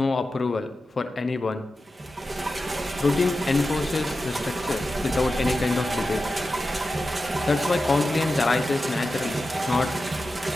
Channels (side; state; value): both; normal; correlation 0.92